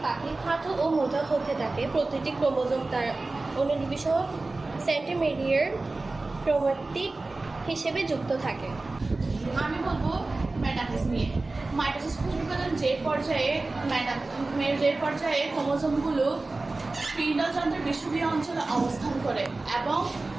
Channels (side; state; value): left; quieter; 3.3 dB